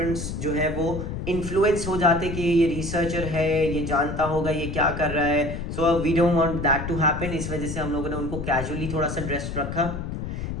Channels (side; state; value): left; noise; rumble, 5 dB below the sound